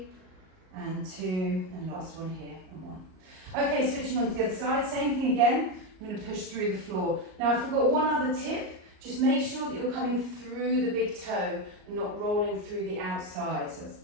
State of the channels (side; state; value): left; late; 38 ms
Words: and 2, and last one here, and 1. Okay, switching on to the other side, same thing again. I'm going to push through the floor. Now I forgot one other tip. Just make sure that you're coming through the big toe and not rolling through the outside. So that's